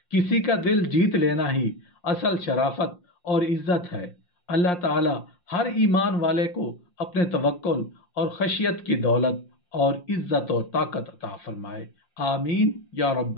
किसी का दिल जीत लेना ही असल शराफत और इज्जत है। अल्लाह ताला हर ईमान वाले को अपने तवक्कुल और खशियत की दौलत और इज्जत और ताकत अता फरमाए। आमीन या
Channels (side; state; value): right; late; 5.7 ms